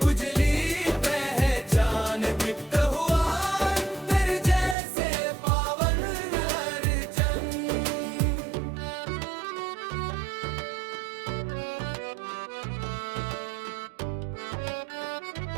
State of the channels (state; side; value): drops out; left; at 4.8 s